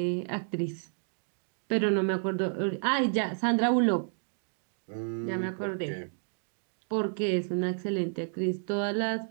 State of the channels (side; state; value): left; silent; digital silence